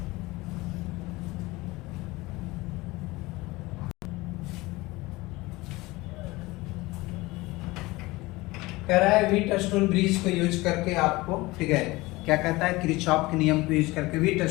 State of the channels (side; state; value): right; quieter; 21.2 dB